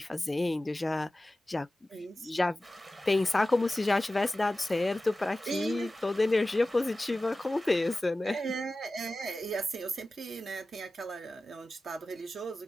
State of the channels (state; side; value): normal; both; correlation 0.95